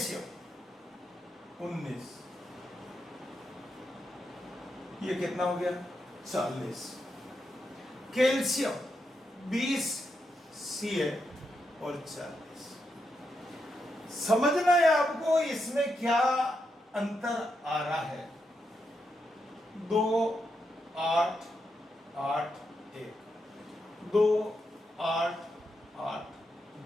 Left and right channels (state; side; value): normal; both; correlation 0.84